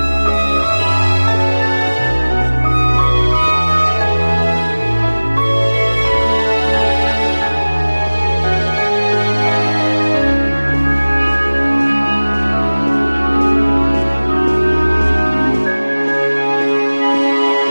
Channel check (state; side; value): inverted; both; correlation -1.00